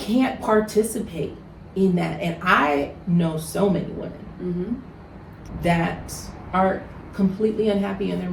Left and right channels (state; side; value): identical; both; correlation 1.00